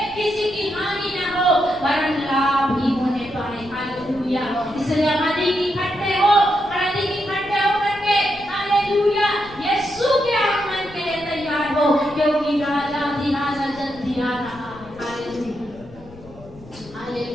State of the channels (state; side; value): noise; left; rumble, 20 dB below the sound